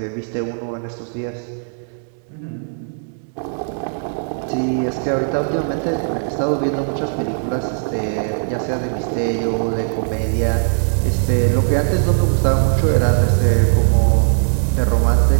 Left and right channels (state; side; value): silent; left; digital silence